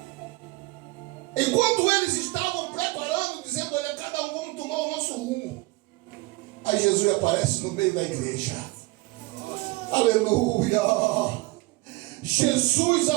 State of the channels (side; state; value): left; quieter; 22.5 dB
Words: Enquanto eles estavam preparando, dizendo: olha, cada um vamos tomar o nosso rumo. Aí Jesus aparece no meio da igreja. Aleluia! Jesus